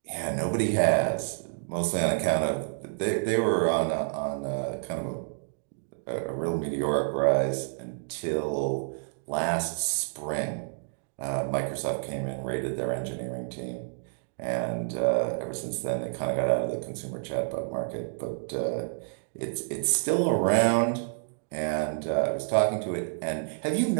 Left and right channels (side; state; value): left; silent; digital silence